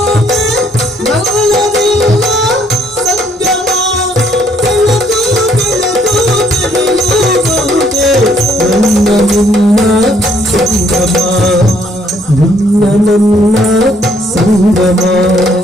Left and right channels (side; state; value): both; normal; correlation 0.66